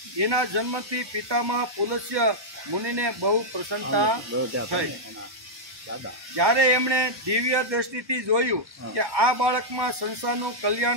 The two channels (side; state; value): left; late; 1.1 ms